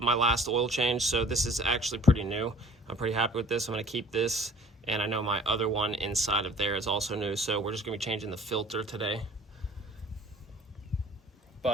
last oil change. So this is actually pretty new. I'm pretty happy with this. I'm gonna keep this. And I know my other one inside of there is also new. So we're just gonna be changing the filter today.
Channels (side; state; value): both; normal; correlation 0.50